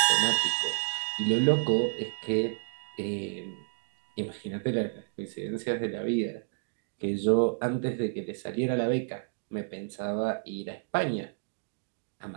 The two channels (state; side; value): silent; left; digital silence